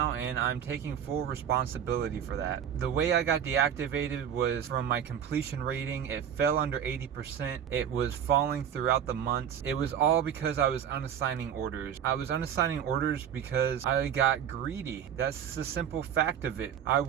and I'm taking full responsibility for that. The way I got deactivated was from my completion rating. It fell under 80%. It was falling throughout the months. It was all because I was unassigning orders. I was unassigning orders because I got greedy. That's the simple fact of it. I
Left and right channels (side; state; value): left; quieter; 9.0 dB